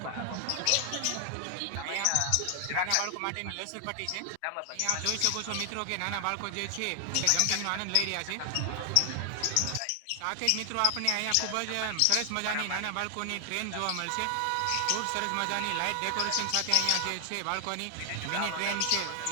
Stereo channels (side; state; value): both; different; correlation 0.00